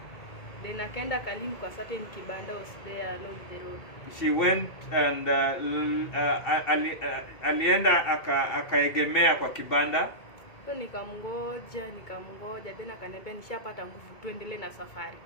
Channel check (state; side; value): late; right; 2.2 ms